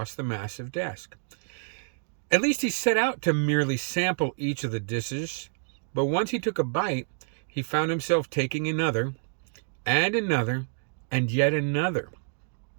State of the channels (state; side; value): silent; left; digital silence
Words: the massive desk. At least he set out to merely sample each of the dishes, but once he took a bite, he found himself taking another, and another, and yet another.